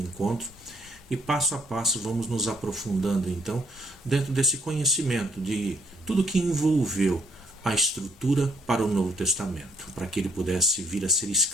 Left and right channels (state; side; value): normal; both; correlation 0.68